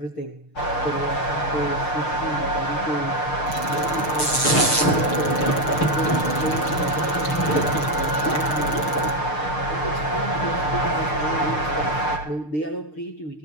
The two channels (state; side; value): late; right; 6.6 ms